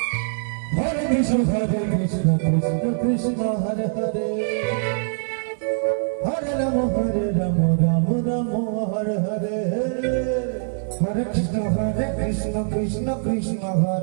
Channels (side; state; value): left; silent; digital silence